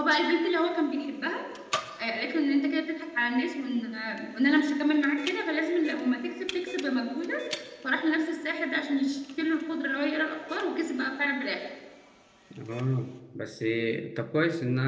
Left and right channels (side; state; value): both; identical; correlation 1.00